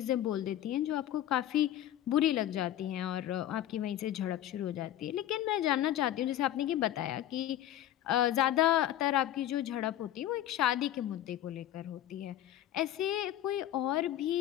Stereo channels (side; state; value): right; quieter; 12.4 dB